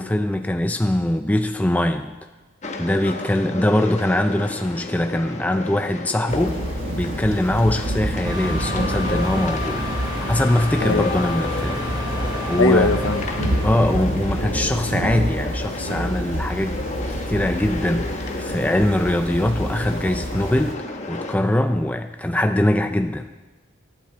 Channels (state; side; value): normal; both; correlation 0.79